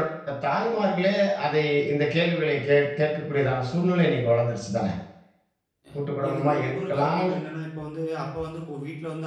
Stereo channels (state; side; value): identical; both; correlation 1.00